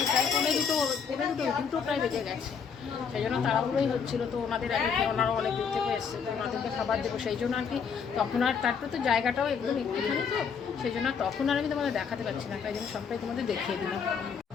প্রায় দুটো প্রায় বেজে গেছে, সেই জন্য তাড়াহুড়োই হচ্ছিল। তো ওনাদের ওনারা অনেক দূর থেকে এসছে, তো ওনাদেরকে খাবার দেবো, সেই জন্য আর কি তখন আর তারপরে তো জায়গাটাও একদম একটুখানি, তো সেই জন্য তখন আর আমি তোমাদের দেখাতে পারছি না, তাই জন্য সবটাই তোমাদের দেখিয়ে দিলাম।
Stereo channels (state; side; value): quieter; right; 6.5 dB